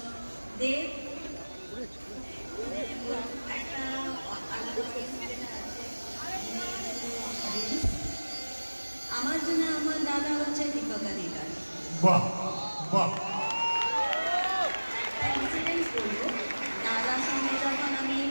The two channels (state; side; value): inverted; both; correlation -1.00